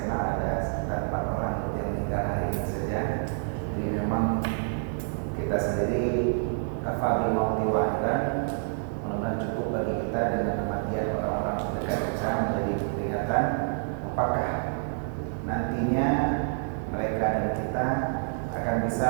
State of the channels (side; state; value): left; silent; 59 dB below the other